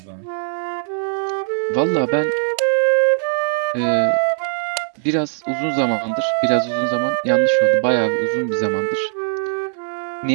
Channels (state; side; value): silent; left; digital silence